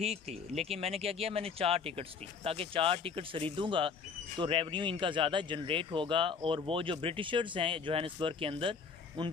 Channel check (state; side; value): quieter; right; 5.6 dB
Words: थी, लेकिन मैंने क्या किया, मैंने 4 टिकट्स ली ताकि 4 टिकट्स खरीदूँगा तो रेवेन्यू इनका ज़्यादा जनरेट होगा और वो जो ब्रिटिशर्स हैं जोहानिसबर्ग के अंदर